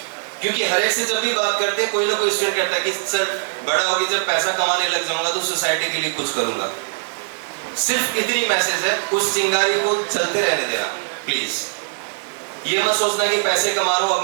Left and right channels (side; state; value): left; silent; digital silence